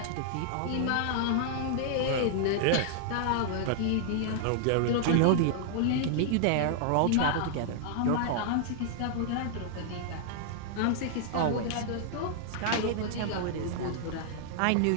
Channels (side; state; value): both; different; correlation -0.01